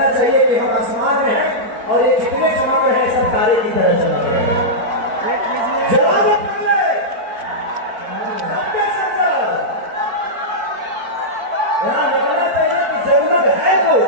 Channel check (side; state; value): left; late; 4.5 ms